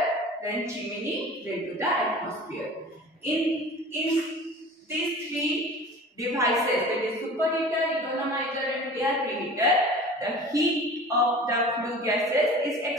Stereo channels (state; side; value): normal; both; correlation 0.40